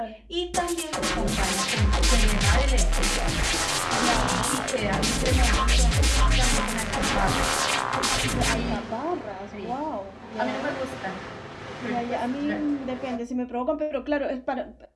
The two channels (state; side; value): identical; both; correlation 1.00